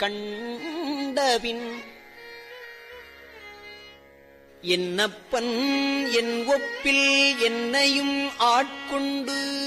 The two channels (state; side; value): identical; both; correlation 1.00